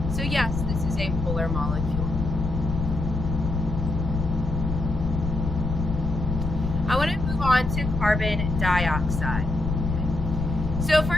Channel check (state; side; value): noise; left; rumble, 3 dB below the sound